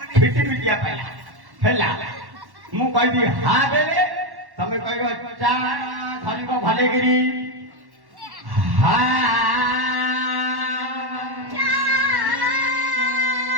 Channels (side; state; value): left; late; 1.1 ms